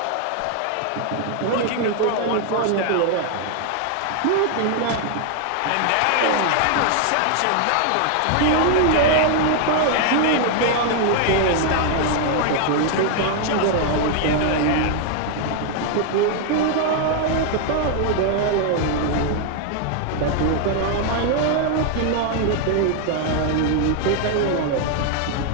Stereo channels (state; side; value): different; both; correlation 0.00